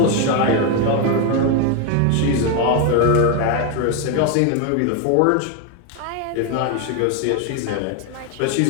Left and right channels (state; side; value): different; both; correlation 0.02